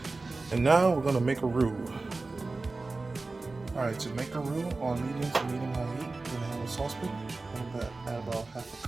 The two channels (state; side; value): quieter; left; 3.5 dB